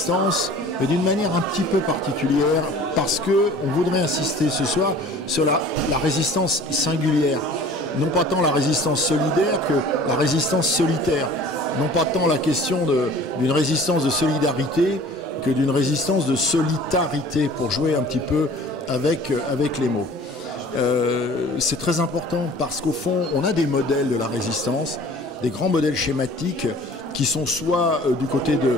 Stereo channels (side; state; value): both; normal; correlation 0.47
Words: mais d'une manière un petit peu particulière, parce qu'on voudrait insister ce soir sur la résistance singulière. Non pas tant la résistance solidaire que la résistance solitaire. Non pas tant la question d'une résistance de solidarité que d'une résistance de solitarité, pour jouer un petit peu avec les mots. C'est très important parce qu'au fond, on a des modèles de la résistance, des grands modèles schématiques qui sont soit du côté